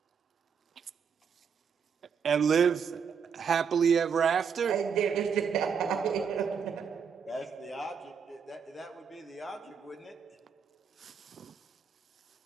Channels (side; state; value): left; quieter; 6.6 dB